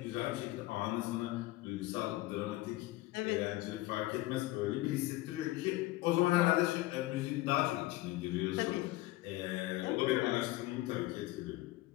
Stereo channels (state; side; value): quieter; right; 18.5 dB